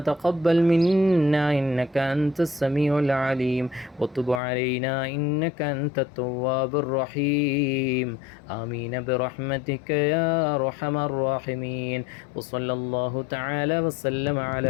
تقبل منا إنك أنت السميع العليم وتب علينا إنك أنت التواب الرحيم. آمين برحمتك يا أرحم الراحمين. وصلى الله تعالى وسلم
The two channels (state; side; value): drops out; right; at 4.4 s